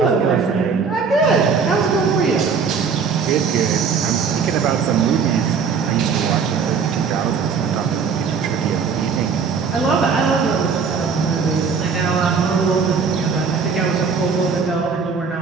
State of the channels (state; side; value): quieter; left; 5.7 dB